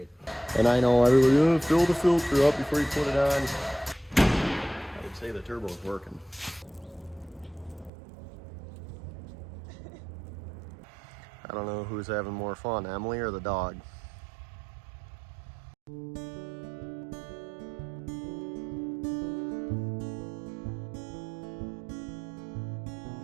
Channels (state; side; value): drops out; left; at 7.9 s